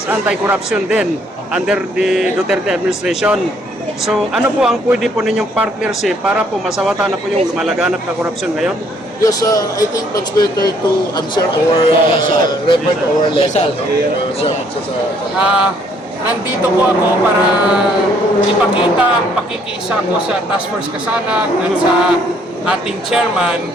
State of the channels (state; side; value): normal; both; correlation 0.65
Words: anti-corruption din under the Duterte administration. So ano po ang pwede po ninyong partnership para po masawatan na po yung lumalaganap na korupsyon ngayon? Yes, I think that's better to answer or refer to our legal. Nandito po ako para ipakita ang pakikiisa ko sa Task Force Kasanag at sa ating chairman.